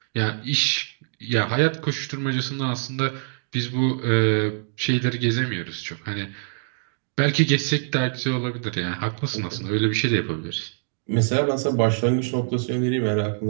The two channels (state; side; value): silent; left; digital silence